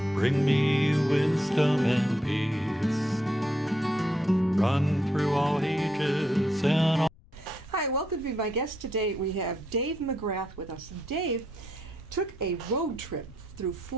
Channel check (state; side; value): noise; left; rumble, 27 dB below the sound